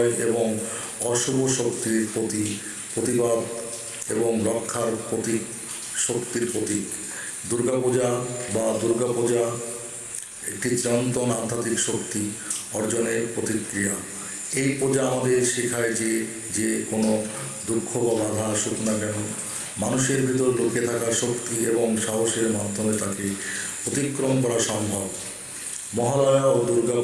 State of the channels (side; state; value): both; identical; correlation 1.00